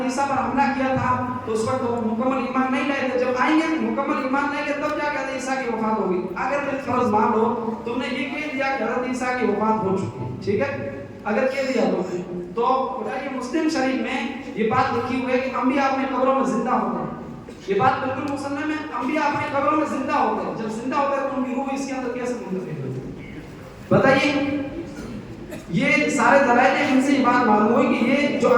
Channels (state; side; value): identical; both; correlation 1.00